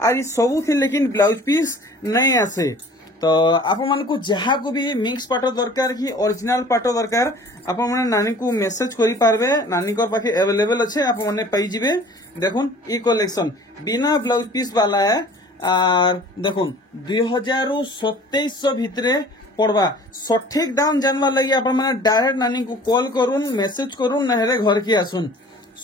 और ई सब थी लेकिन ब्लाउज पीस नहीं आसे। तो आपण मन को जहा को भी मिक्स पाटो दरकार की ओरिजिनल पाटो दरकार आपण माने नानी को मेसेज करि पारबे। नानी को पाखे अवेलेबल अच्छे आपण माने पाई जिबे। देखुन ई कलेक्शन बिना ब्लाउज पीस वाला है और देखुन 2700 भितरे पड़वा। सठिक दाम जानवा लगी आपण माने डायरेक्ट नानी को कॉल करूँ मेसेज करूँ नहले घर की आसुन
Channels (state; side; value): normal; both; correlation 0.48